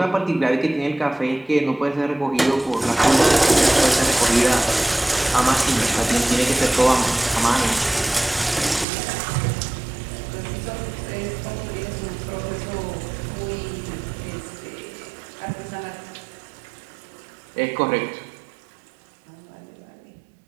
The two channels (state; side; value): drops out; left; at 8.8 s